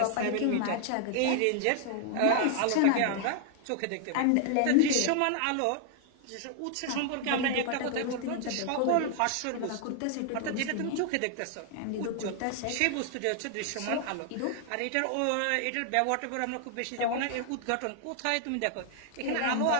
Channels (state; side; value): different; both; correlation 0.00